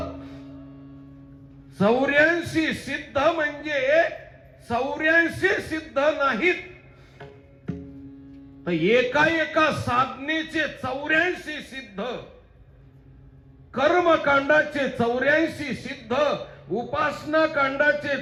84 सिद्ध म्हणजे 84 सिद्ध नाहीत तर एका साधनेचे 84 सिद्ध, कर्मकांडाचे 84 सिद्ध, उपासना कांडाचे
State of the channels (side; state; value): both; identical; correlation 1.00